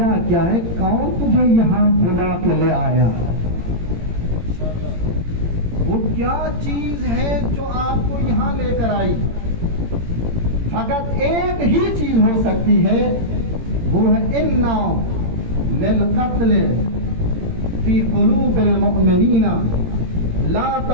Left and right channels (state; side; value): late; left; 18 ms